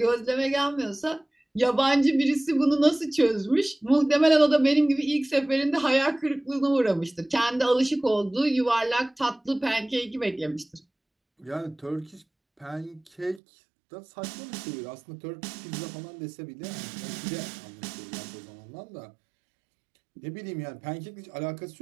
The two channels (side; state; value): left; drops out; at 13.4 s